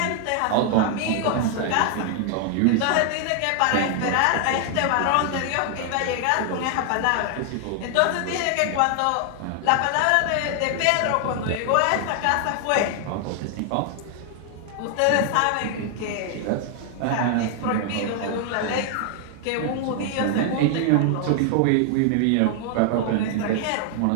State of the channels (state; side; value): different; both; correlation 0.00